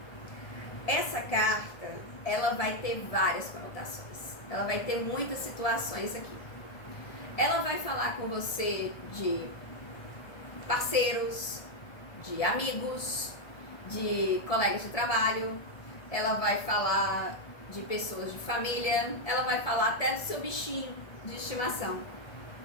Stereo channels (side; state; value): right; late; 1.7 ms